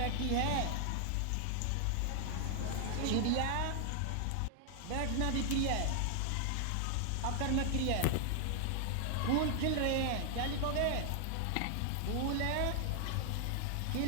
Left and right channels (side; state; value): both; different; correlation 0.00